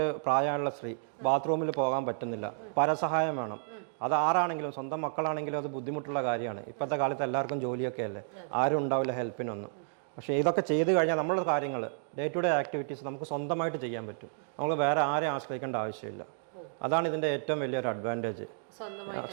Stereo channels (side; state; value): left; silent; digital silence